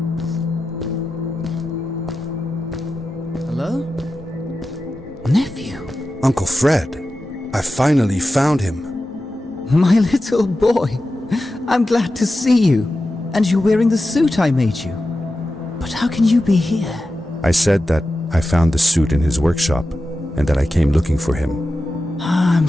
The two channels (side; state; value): both; normal; correlation 0.92